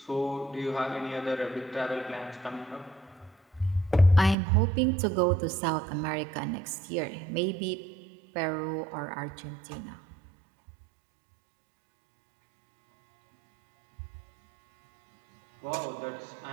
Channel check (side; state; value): left; drops out; at 4.4 s